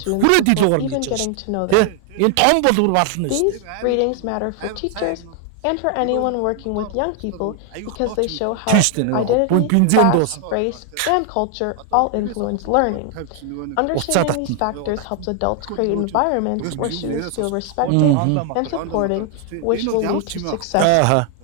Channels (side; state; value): both; different; correlation 0.00